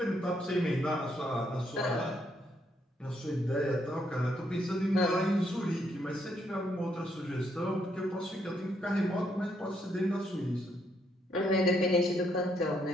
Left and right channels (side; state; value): both; normal; correlation 0.74